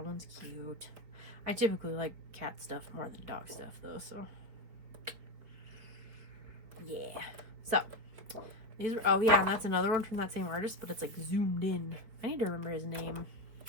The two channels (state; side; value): late; left; 4.7 ms